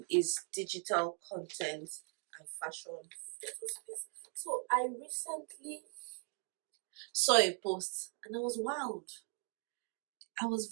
is digital content and fashion photo space. So I recently saw a post and I was wowed. I was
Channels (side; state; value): left; quieter; 39.6 dB